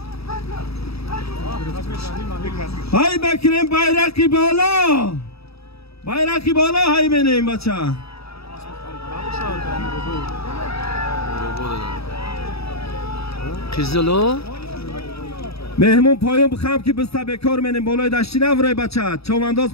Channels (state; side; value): late; right; 0.78 ms